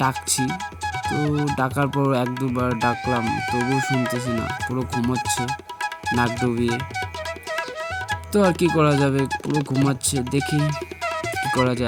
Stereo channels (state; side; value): identical; both; correlation 1.00